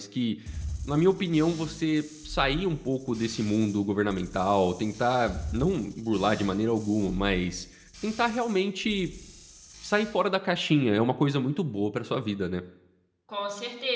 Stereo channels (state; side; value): identical; both; correlation 1.00